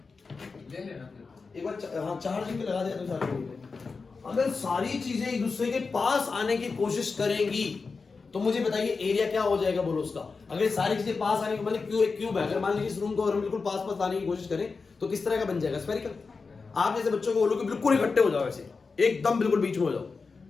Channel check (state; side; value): quieter; right; 4.5 dB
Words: एक बार, हाँ चार्जिंग पे लगा दिया तो चार्जिंग। अगर सारी चीजें एक दूसरे के पास आने की कोशिश करेंगी तो मुझे बताइए एरिया क्या हो जाएगा? बोलो उसका। अगर सारी चीजें पास आने की, मतलब क्यों एक क्यूब है, अगर मान लीजिए इस रूम को अगर बिल्कुल पास पास आने की कोशिश करें तो किस तरह का बन जाएगा? स्फेरिकल। आप जैसे बच्चों को बोलो कि बिल्कुल इकट्ठे हो जाओ, ऐसे एकदम बिल्कुल बीच में हो जाओ,